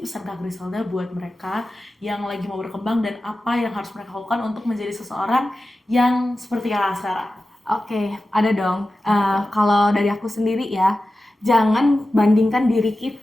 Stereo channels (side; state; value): both; normal; correlation 0.94